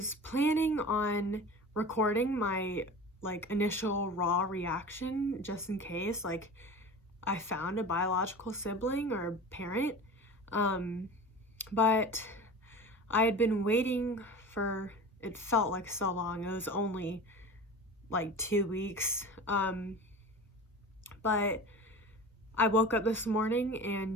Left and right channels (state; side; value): normal; both; correlation 0.34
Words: planning on recording my initial raw reaction just in case I found a biological sibling or parent, but I had been waiting for, it felt like so long. It was only 2 weeks, but I woke up this morning